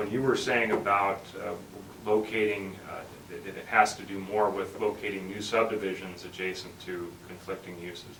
you were saying about locating, that it has to do more with locating new subdivisions adjacent to conflicting uses,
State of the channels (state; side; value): identical; both; correlation 1.00